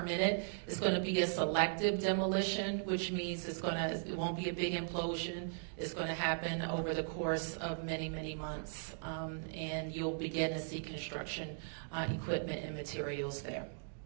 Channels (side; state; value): left; silent; digital silence